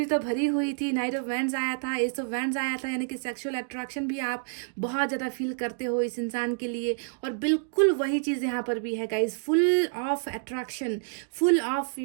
तो भरी हुई थी। नाइट ऑफ वैंड्स आया था, एस ऑफ वैंड्स आया था, यानी कि सेक्सुअल अट्रैक्शन भी आप बहुत ज़्यादा फील करते हो इस इंसान के लिए। और बिल्कुल वही चीज़ यहाँ पर भी है guys, full of attraction, full of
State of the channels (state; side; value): silent; left; digital silence